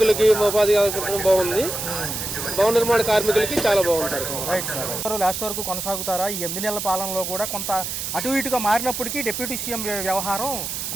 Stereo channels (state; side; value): noise; right; hiss, 4 dB below the sound